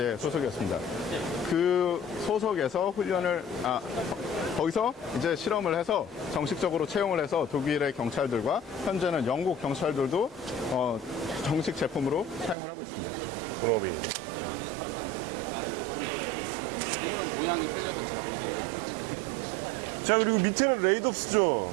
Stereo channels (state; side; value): drops out; left; at 12.6 s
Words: 소속이었습니다. 그 소속에서 훈련을, 거기서 이제 실험을 해서 정식적으로 채용을 해서 독일의 경찰들과 현재는 영국 경찰들도 정식 제품으로 사용을 하고 있습니다. 본업이. 자, 그리고 밑에는 레이덥스죠.